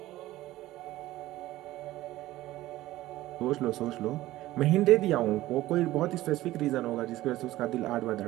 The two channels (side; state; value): left; quieter; 16.3 dB